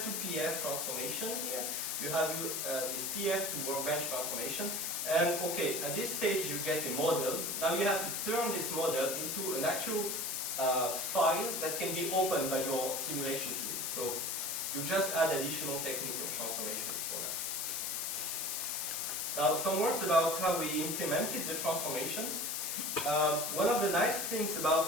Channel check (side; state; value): left; noise; hiss, 1 dB below the sound